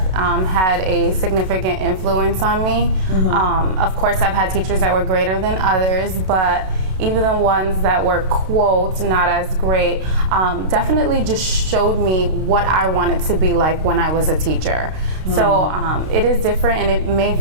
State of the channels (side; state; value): left; late; 32 ms